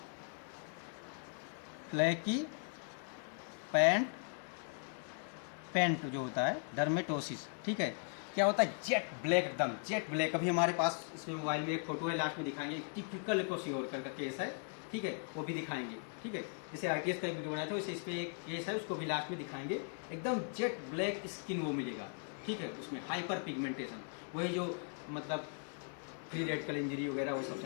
फ्लैकी पैंट पेंट जो होता है डर्मेटोसिस, ठीक है। क्या होता है, जेट ब्लैक, एकदम जेट ब्लैक। अभी हमारे पास इसमें मोबाइल में एक फोटो है, लास्ट में दिखाएंगे, टिपिकल क्वाशियोरकर का केस है, ठीक है, वो भी दिखाएंगे, ठीक है। जैसे ITS का एक वीडियो बनाया था वैसे इस पर एक केस है, उसको भी लास्ट में दिखाएंगे। एकदम जेट ब्लैक स्किन वो मिलेगा, ठीक है, उसमें हाइपर पिगमेंटेशन, वही जो मतलब फ्री रेडिकल इंजरी वगैरह वो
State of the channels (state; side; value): silent; right; 52 dB below the other